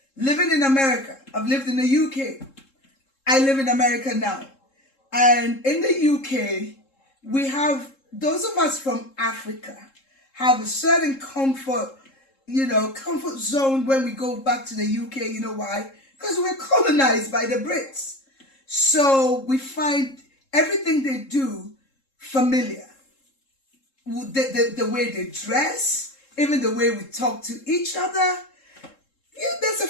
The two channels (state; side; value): late; right; 3.7 ms